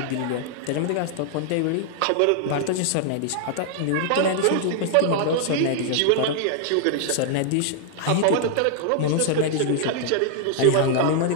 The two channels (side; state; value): both; different; correlation 0.00